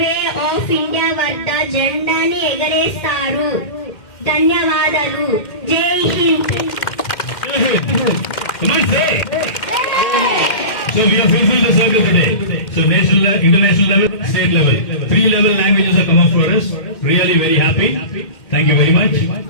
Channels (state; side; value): late; right; 2.1 ms